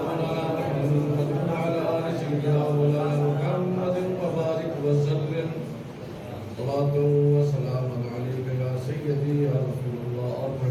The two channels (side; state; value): both; identical; correlation 1.00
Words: محمد وعلى آل سيدنا محمد وبارك وسلم. صلاة وسلام عليك يا سيدي يا رسول الله.